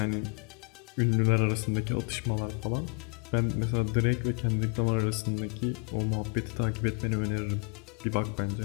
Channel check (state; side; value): quieter; right; 37.2 dB